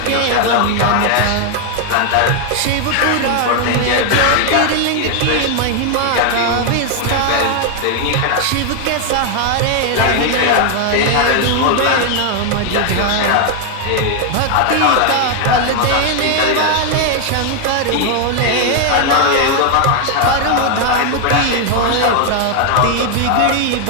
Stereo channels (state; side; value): different; both; correlation 0.00